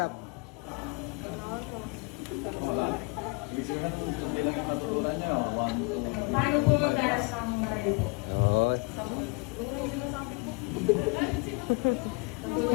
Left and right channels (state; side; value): quieter; right; 30.1 dB